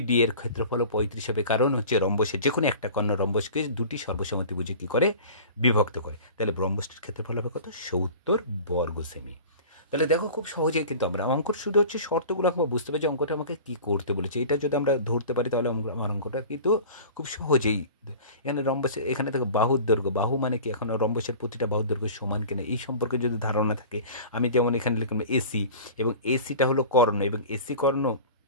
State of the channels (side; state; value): both; inverted; correlation -0.40